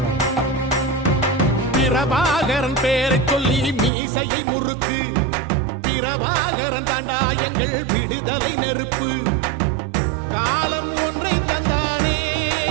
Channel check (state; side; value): drops out; left; at 3.9 s